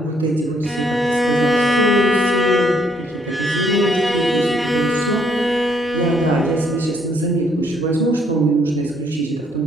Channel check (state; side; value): normal; both; correlation 0.68